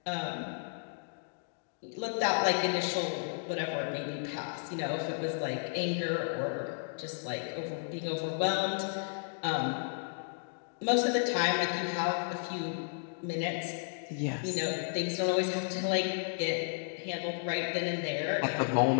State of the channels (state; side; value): silent; right; digital silence